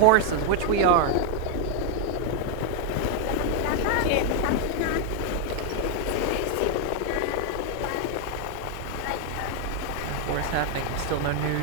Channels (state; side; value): different; both; correlation 0.00